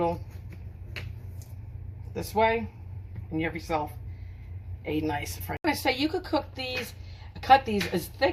this way, and you have yourself a nice french. I'm gonna say you could cook these, cut these as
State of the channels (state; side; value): identical; both; correlation 1.00